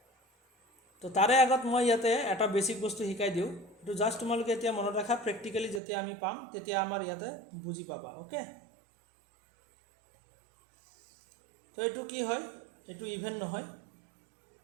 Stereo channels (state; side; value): drops out; left; at 5.8 s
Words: তো তাৰে আগত মই ইয়াতে এটা বেছিক বস্তু শিকাই দিওঁ, এইটো জাষ্ট তোমালোকে এতিয়া মনত ৰাখা, প্ৰেক্টিকেলি যেতিয়া আমি পাম তেতিয়া আমাৰ ইয়াতে বুজি পাবা। অ'কে, তো এইটো কি হয়? এইটো ইভেন নহয়,